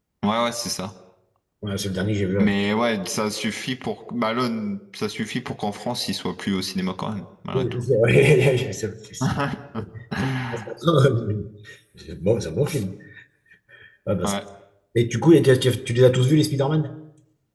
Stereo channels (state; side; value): identical; both; correlation 1.00